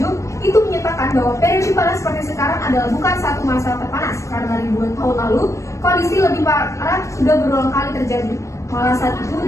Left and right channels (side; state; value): right; late; 0.15 ms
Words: itu menyatakan bahwa periode panas seperti sekarang adalah bukan satu masa terpanas, karena ribuan tahun lalu, kondisi lebih parah sudah berulang kali terjadi. Malah saat itu